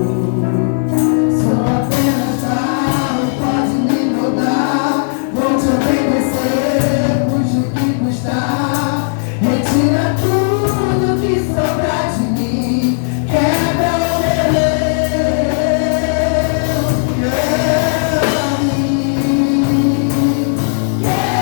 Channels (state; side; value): silent; right; digital silence